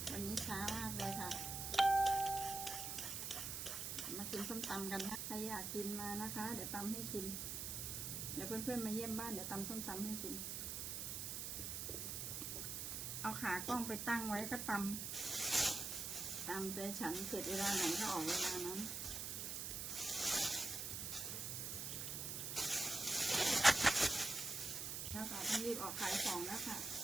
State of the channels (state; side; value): noise; right; hiss, 3 dB below the sound